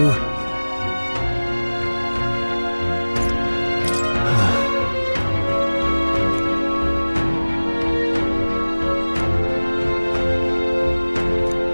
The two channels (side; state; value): both; inverted; correlation -1.00